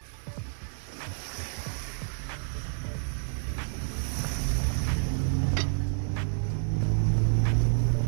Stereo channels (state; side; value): silent; left; 58 dB below the other